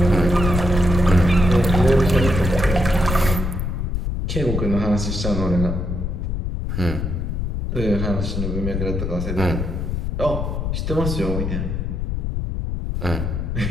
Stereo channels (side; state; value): left; noise; rumble, 2 dB below the sound